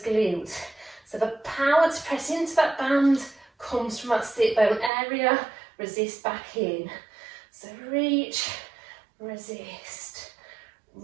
glutes. So the power to press into that band comes from that sit bone area, resist back in. So reach, resist,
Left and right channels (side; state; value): left; drops out; at 4.9 s